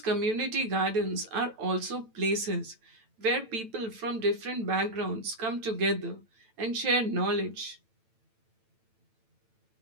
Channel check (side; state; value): left; late; 9.0 ms